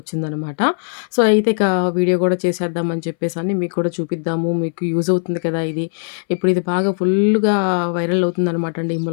సో, అయితే ఇక వీడియో గూడా చేసేద్దామని చెప్పేసని మీకు కూడా చూపిద్దాము. మీకు యూజ్ అవుతుంది కదా ఇది. ఇప్పుడు ఇది బాగా ఫుల్లుగా వైరల్ అవుతుందనమాట అండి. ఈ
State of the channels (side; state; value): right; silent; 63 dB below the other